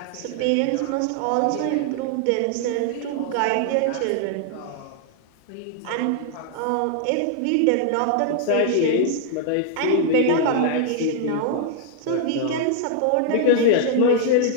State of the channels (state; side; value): different; both; correlation 0.00